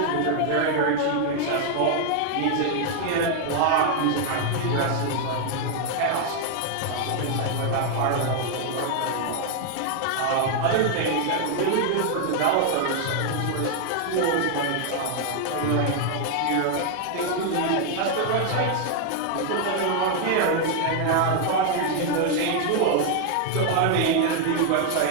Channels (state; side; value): different; both; correlation 0.00